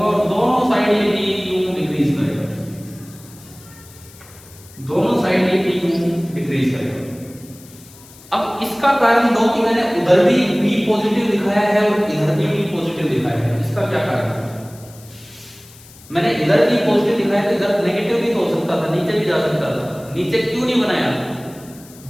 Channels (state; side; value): noise; left; hiss, 22 dB below the sound